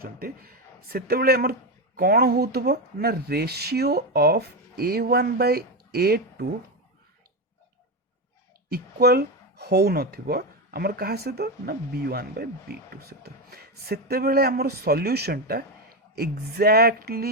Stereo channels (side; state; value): both; normal; correlation 0.12